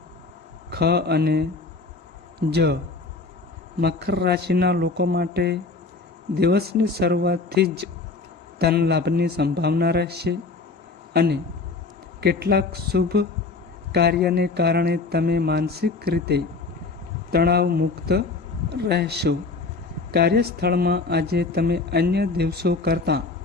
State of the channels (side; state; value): right; quieter; 3.9 dB